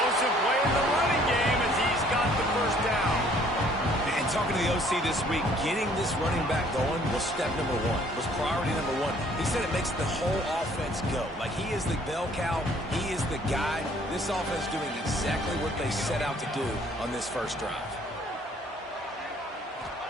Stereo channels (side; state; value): both; normal; correlation 0.59